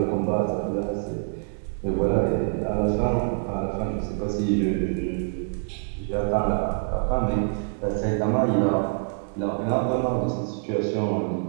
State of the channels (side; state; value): left; silent; 61 dB below the other